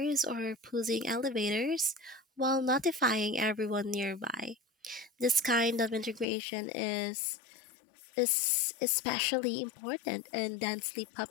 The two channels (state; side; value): drops out; right; at 6.2 s